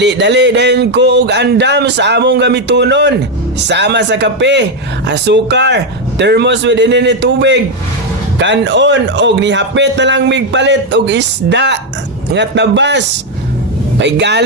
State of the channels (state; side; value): normal; both; correlation 0.05